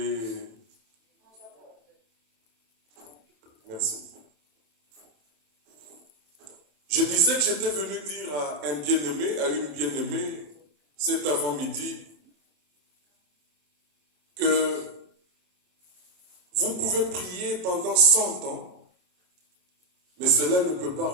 Merci. Je disais que j'étais venu dire à un bien-aimé, à une bien-aimée, cet avant-midi, que vous pouvez prier pendant 100 ans, mais cela ne peut pas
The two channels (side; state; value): left; late; 27 ms